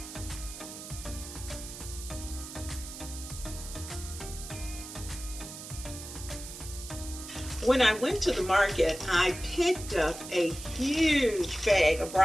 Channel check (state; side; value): noise; right; hiss, 11 dB below the sound